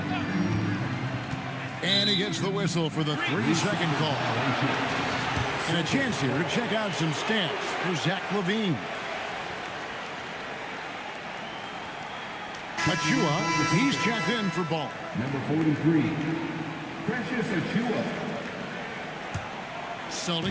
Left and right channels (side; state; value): both; identical; correlation 1.00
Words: And he gets the whistle for the 3-second call. And a chance here to check out some stats for Zach LaVine. Achua, he's checked in for ball. Number 43, Precious Achua.